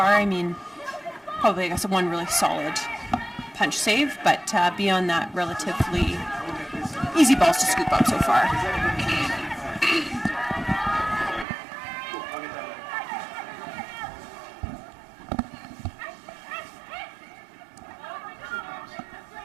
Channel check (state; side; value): drops out; left; at 11.5 s